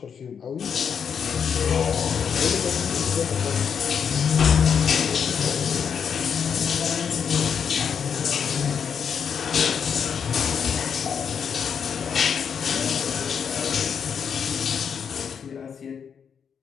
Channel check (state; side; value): quieter; right; 7.1 dB